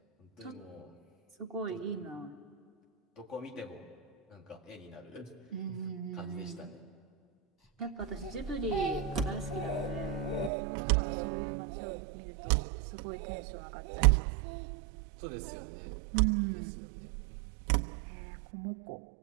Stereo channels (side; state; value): left; drops out; at 10.5 s